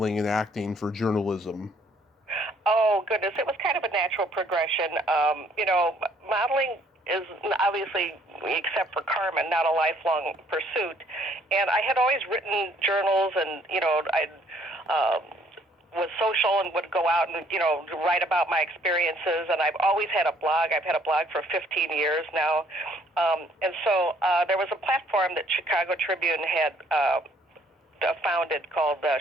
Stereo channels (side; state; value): both; normal; correlation 0.63